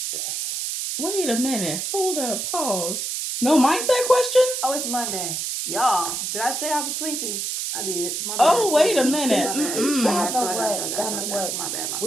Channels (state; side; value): noise; right; hiss, 3 dB below the sound